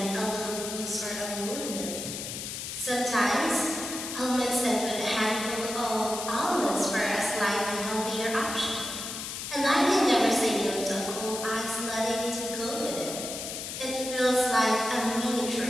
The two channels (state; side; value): noise; left; hiss, 6 dB below the sound